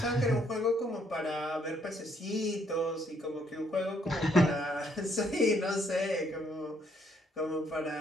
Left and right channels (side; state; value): both; normal; correlation 0.70